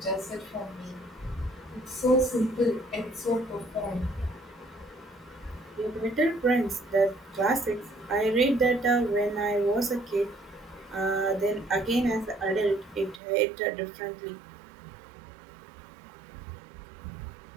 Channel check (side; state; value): left; drops out; at 13.2 s